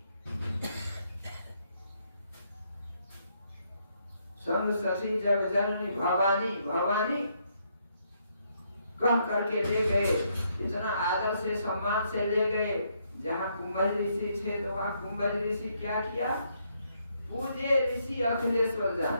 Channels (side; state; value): both; inverted; correlation -0.74